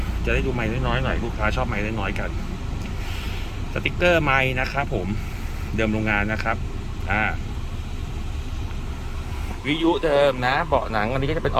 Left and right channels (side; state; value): both; identical; correlation 1.00